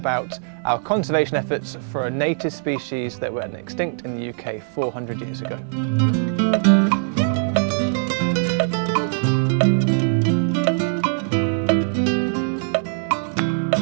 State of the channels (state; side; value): silent; left; digital silence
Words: our conservation efforts for a native species that went extinct in the UK 400 years ago.